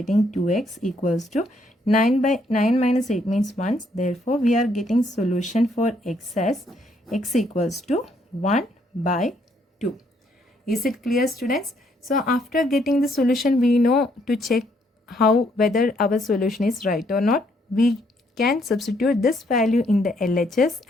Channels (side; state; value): both; normal; correlation 0.70